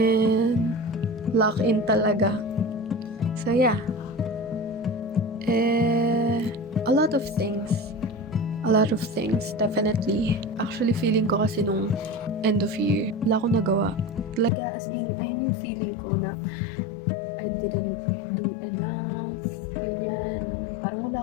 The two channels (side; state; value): right; drops out; at 14.5 s